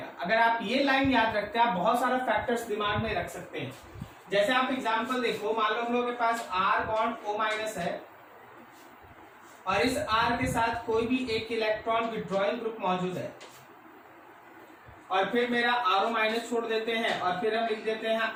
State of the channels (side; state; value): both; identical; correlation 1.00